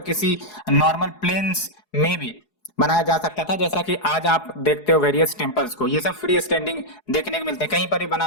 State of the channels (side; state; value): right; late; 4.8 ms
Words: किसी नॉर्मल प्लेन्स में भी बनाया जा सकता था। जैसा कि आज आप देखते हो वेरियस टेम्पल्स को, ये सब फ्री स्टैंडिंग देखने को मिलते हैं, कहीं पर भी बना